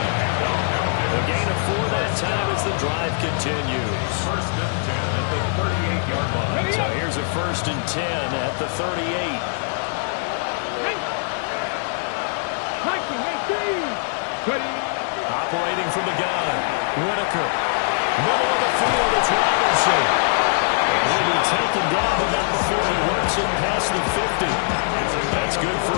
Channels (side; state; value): right; silent; digital silence